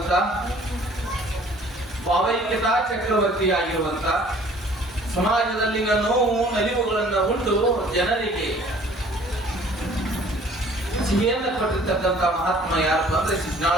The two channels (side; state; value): both; normal; correlation 0.54